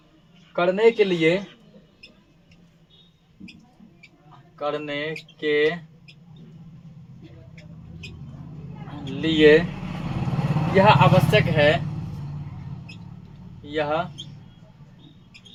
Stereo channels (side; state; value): both; identical; correlation 1.00